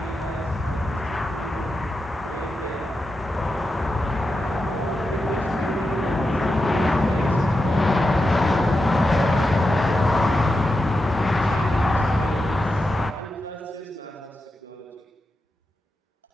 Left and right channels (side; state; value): both; normal; correlation 0.89